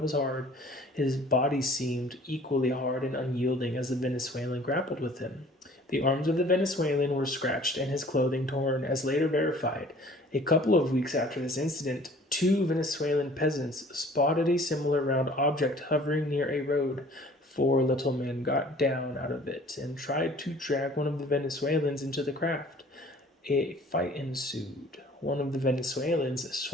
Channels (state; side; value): normal; both; correlation 0.51